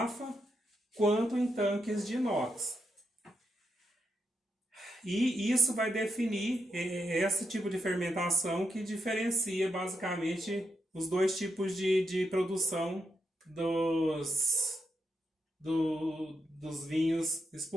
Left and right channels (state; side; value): normal; both; correlation 0.83